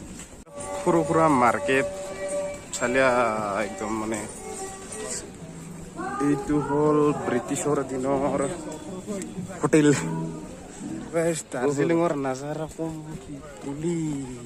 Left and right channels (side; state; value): both; identical; correlation 1.00